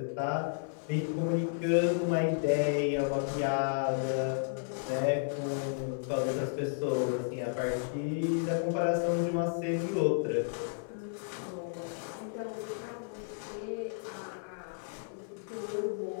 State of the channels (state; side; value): silent; right; digital silence